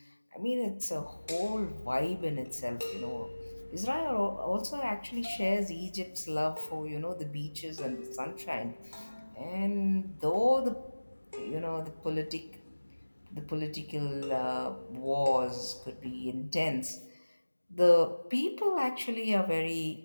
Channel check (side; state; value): both; inverted; correlation -1.00